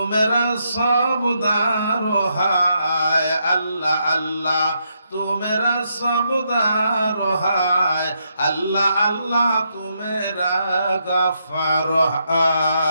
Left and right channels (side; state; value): both; inverted; correlation -0.79